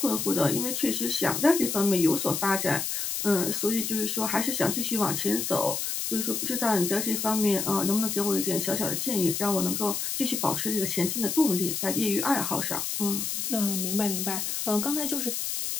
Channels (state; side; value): noise; left; hiss, 2 dB below the sound